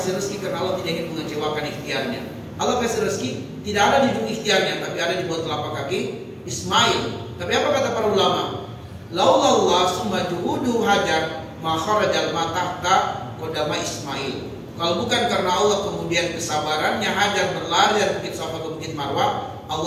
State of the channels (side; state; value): both; identical; correlation 1.00